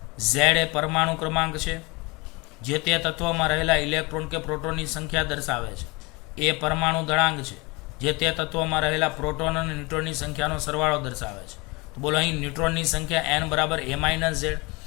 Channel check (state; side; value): quieter; right; 25.9 dB